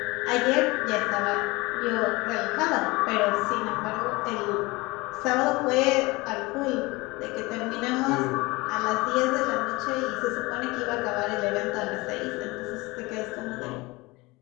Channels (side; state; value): right; quieter; 22.8 dB